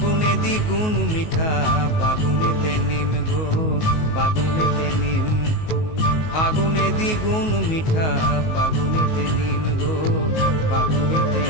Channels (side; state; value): right; late; 19 ms